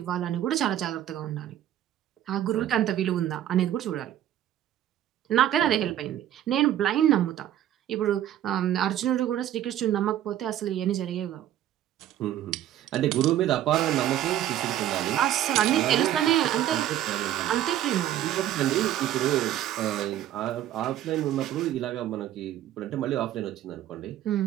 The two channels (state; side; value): quieter; left; 12.0 dB